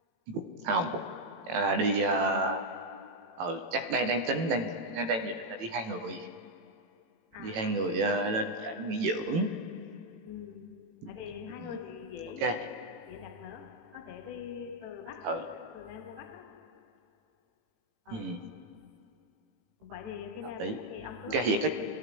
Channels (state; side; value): late; left; 18 ms